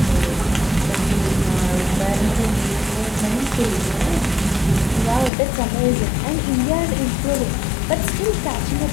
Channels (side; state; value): right; drops out; at 5.3 s